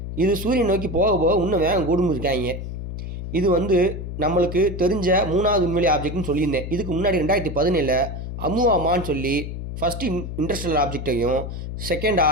இது சூரியன் நோக்கி போக போக இன்னும் வேகம் கூடும் இருக்காங்க. இது வந்து நம்மளுக்கு தெரிஞ்ச மூணாவது விண்வெளி ஆப்ஜெக்ட்னு சொல்லியிருந்தேன். இதுக்கு முன்னாடி 2017 அமுவாமான்னு சொல்லி ஃபஸ்ட்டு இன்டர்ஸ்டெல்லர் ஆப்ஜெக்டையும்,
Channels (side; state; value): left; noise; hum, 7 dB below the sound